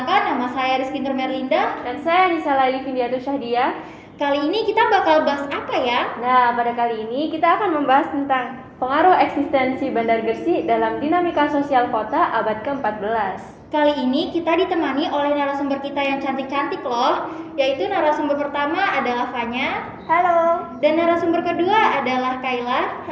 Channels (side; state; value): both; identical; correlation 1.00